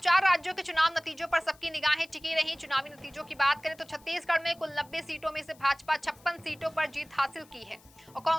राज्यों के चुनाव नतीजों पर सबकी निगाहें टिकी रहीं। चुनावी नतीजों की बात करें तो छत्तीसगढ़ में कुल 90 सीटों में से भाजपा 56 सीटों पर जीत हासिल की है और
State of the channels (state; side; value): noise; left; hiss, 27 dB below the sound